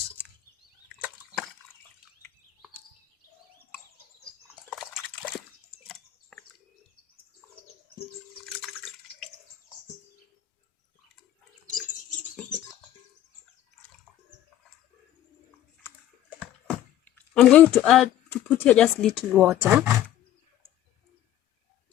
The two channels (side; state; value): right; quieter; 12.3 dB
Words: I'm going to put here just little water.